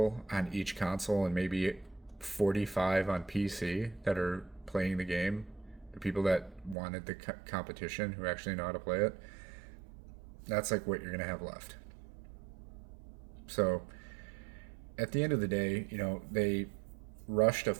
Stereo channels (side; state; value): left; drops out; at 6.8 s